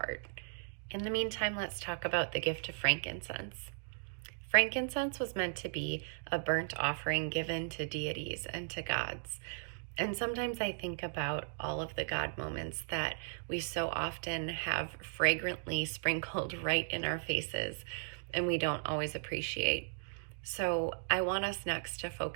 In the meantime, let's talk about the gift of frankincense. Frankincense was meant to be a burnt offering given to deities and to gods. And sometimes I think about all of the God moments that we so often have fragrantly sprinkled right in our faces and we don't always appreciate. So I want us next to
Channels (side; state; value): left; silent; digital silence